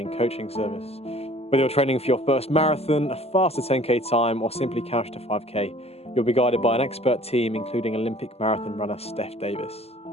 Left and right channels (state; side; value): late; right; 0.29 ms